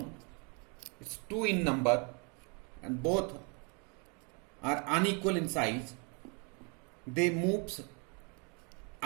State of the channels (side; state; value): left; quieter; 34.6 dB